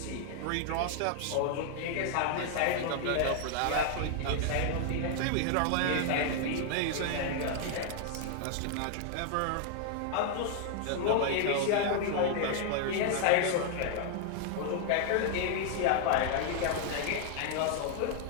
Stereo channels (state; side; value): different; both; correlation 0.00